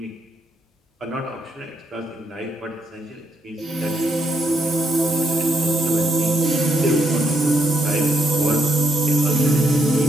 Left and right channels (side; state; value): both; normal; correlation 0.76